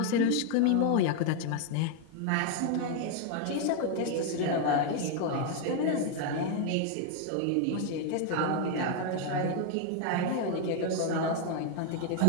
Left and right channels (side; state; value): both; different; correlation 0.01